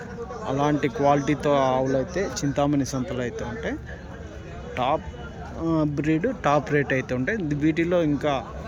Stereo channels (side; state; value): both; identical; correlation 1.00